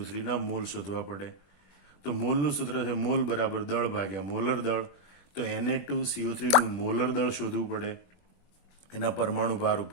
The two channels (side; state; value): right; late; 20 ms